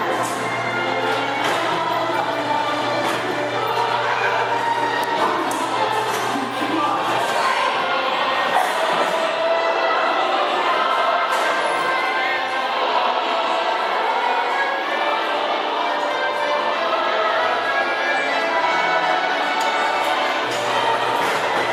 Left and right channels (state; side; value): identical; both; correlation 1.00